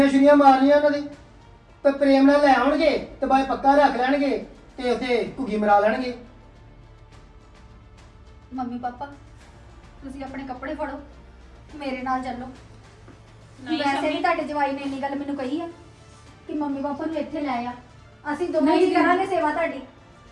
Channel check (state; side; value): identical; both; correlation 1.00